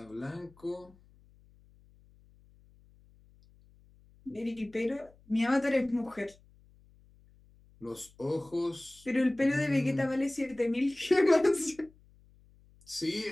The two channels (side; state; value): left; noise; hum, 28 dB below the sound